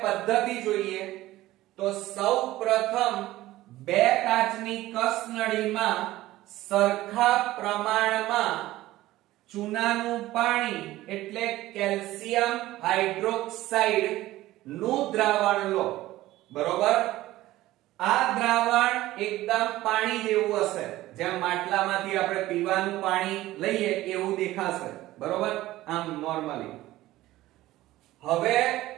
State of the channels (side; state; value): left; quieter; 16.3 dB